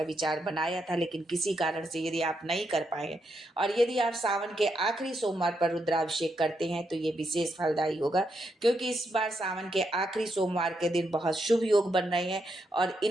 विचार बनाया था, लेकिन किसी कारण से यदि आप नहीं कर पाए, और यदि आप सावन के आखिरी सोमवार पर रुद्राभिषेक करते हैं, तो ये विशेष फलदायी होगा, क्योंकि इस बार सावन के आखिरी सोमवार के दिन बहुत शुभ योग बन रहे हैं। और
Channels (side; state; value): both; normal; correlation 0.80